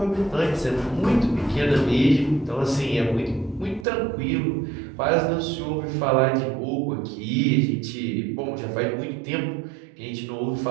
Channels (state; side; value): drops out; left; at 3.9 s